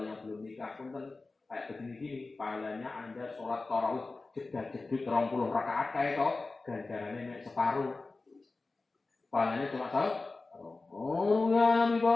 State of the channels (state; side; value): quieter; right; 3.6 dB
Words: yang belum nikah pun kan kayak begini-gini, pahalanya Anda sholat tarawih jedut 20 rakaat kayak itu, ganjarannya separuh. Pahalanya cuma separuh. Oh ya Nabi